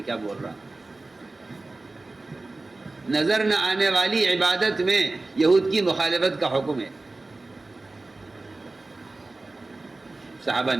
کیا بول رہا؟ نظر نہ آنے والی عبادت میں یہود کی مخالفت کا حکم ہے۔ صحابہ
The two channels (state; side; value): quieter; left; 3.2 dB